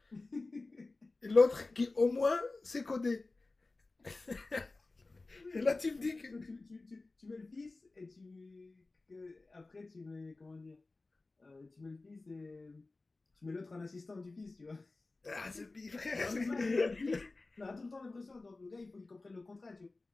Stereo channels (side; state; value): right; quieter; 3.4 dB